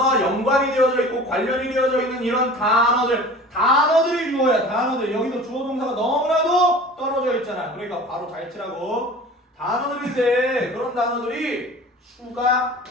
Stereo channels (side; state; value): both; normal; correlation 0.41